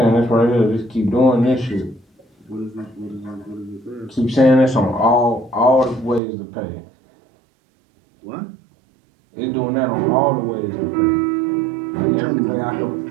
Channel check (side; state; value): left; drops out; at 6.2 s